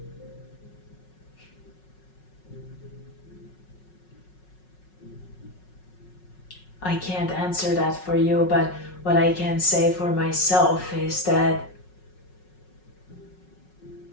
I can't answer that for you, but what I can say for myself is that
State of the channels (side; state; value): right; late; 5.4 ms